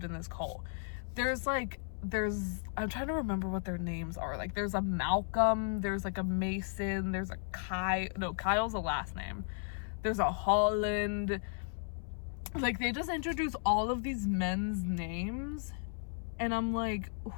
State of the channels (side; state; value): right; silent; 54 dB below the other